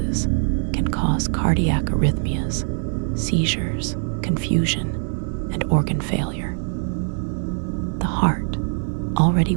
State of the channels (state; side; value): silent; left; 64 dB below the other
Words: can cause cardiac arrhythmias, seizures, confusion, and organ failure. The heart, already